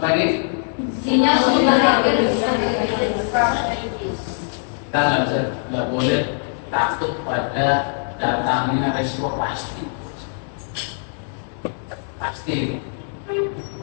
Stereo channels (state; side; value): silent; right; digital silence